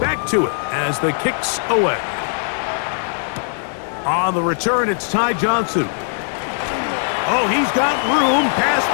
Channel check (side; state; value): right; silent; 56 dB below the other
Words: back to it as the kicks away. On the return, it's Ty Johnson. Oh, he's got room past